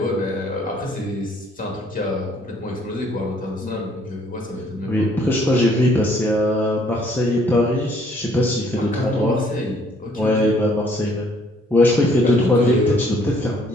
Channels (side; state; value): both; normal; correlation 0.63